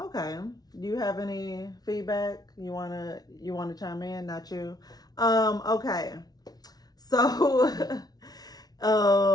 Do you have any feedback? You wanna chime in? Not you. Okay. So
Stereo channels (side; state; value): right; late; 0.19 ms